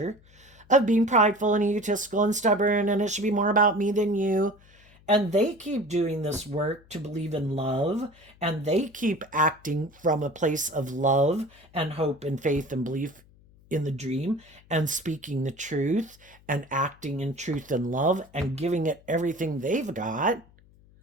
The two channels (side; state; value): left; noise; hum, 27 dB below the sound